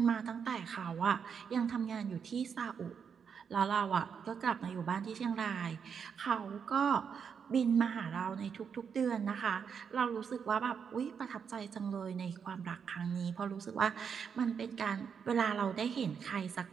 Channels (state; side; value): quieter; left; 6.8 dB